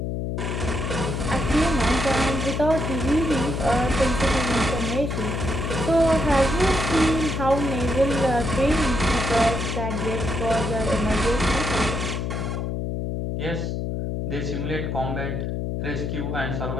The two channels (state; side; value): noise; left; hum, 2 dB below the sound